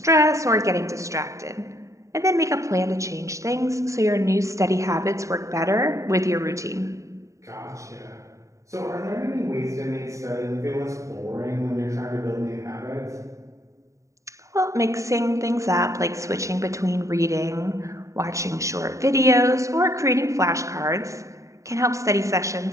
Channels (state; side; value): late; left; 0.15 ms